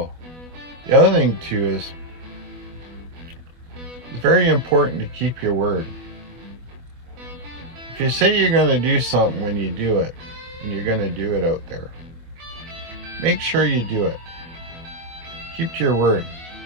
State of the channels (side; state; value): left; late; 25 ms